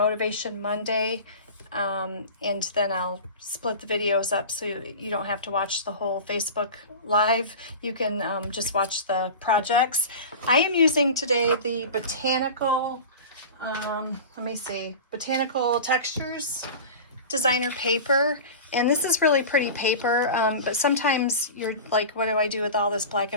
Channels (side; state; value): both; inverted; correlation -0.32